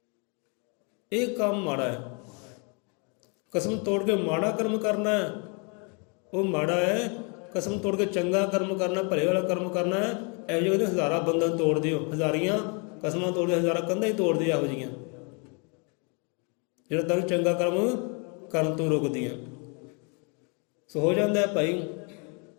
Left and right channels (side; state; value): right; quieter; 35.1 dB